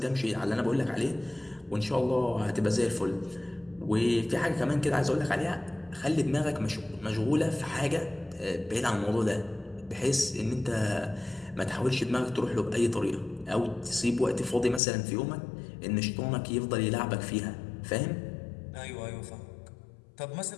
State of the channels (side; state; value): right; drops out; at 14.8 s